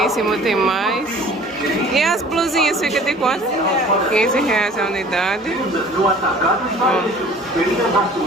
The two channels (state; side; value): normal; both; correlation 0.48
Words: cima tem mais. E as blusinhas ficam de quanto? R$15 a unidade. Ó.